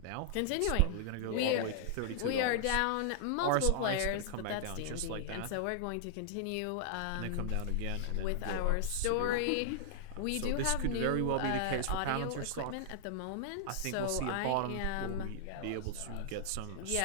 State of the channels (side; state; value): both; different; correlation -0.01